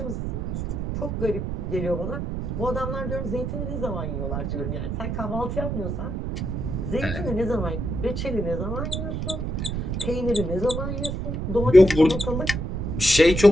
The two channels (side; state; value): right; noise; rumble, 3 dB below the sound